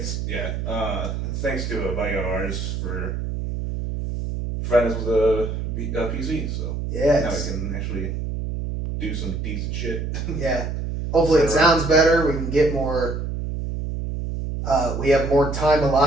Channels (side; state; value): right; noise; hum, 4 dB below the sound